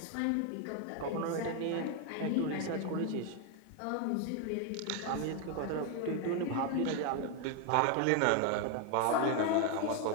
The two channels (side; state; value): both; different; correlation 0.01